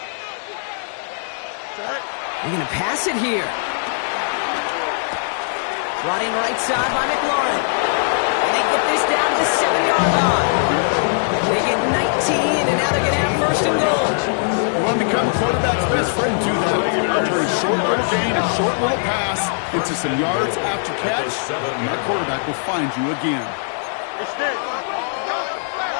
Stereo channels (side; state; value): right; silent; digital silence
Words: They're going to pass it here. Brought in right side by McLaurin. And they get this down to the 7-yard line. They get 19, and now they're going to have 1st and goal. You want to become a quarterback's best friend, do that. Turn short little gain, a short little pass into some yards after catch, and that quarterback will find you again. Extend.